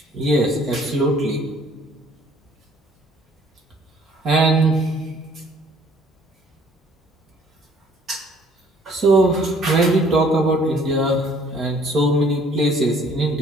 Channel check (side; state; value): both; normal; correlation 0.58